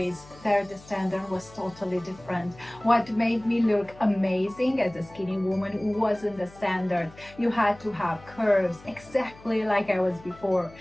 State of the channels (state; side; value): noise; left; hum, 22 dB below the sound